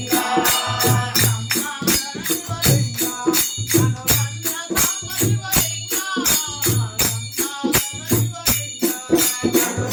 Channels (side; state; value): both; identical; correlation 1.00